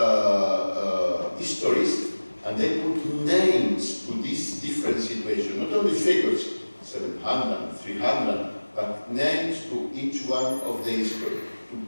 histories and they put names to these different situations, not only figures, 700, 300, but names to each one of the history, to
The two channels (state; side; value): inverted; both; correlation -1.00